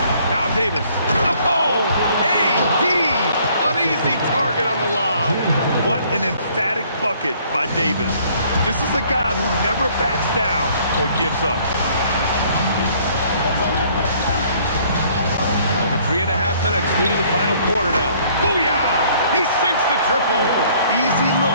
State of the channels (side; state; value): both; inverted; correlation -0.60